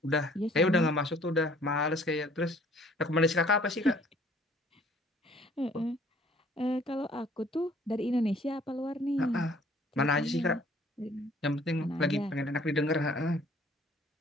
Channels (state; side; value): normal; both; correlation 0.57